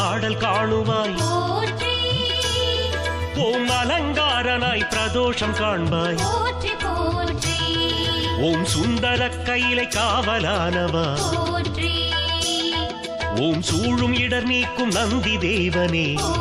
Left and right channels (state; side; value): identical; both; correlation 1.00